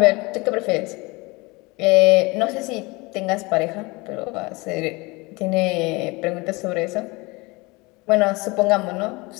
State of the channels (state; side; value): quieter; right; 24.8 dB